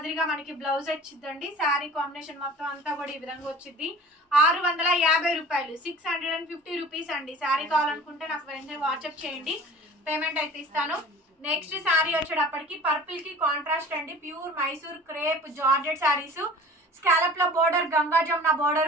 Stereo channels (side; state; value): both; normal; correlation 0.44